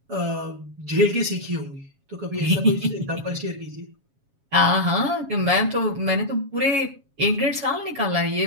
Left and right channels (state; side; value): late; left; 7.3 ms